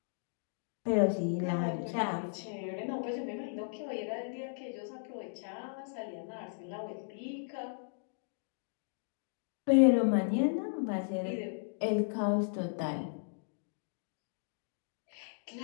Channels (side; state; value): right; silent; digital silence